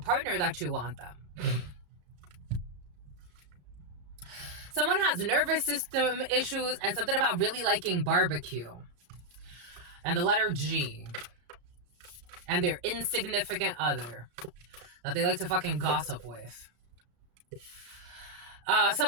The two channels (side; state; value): left; late; 34 ms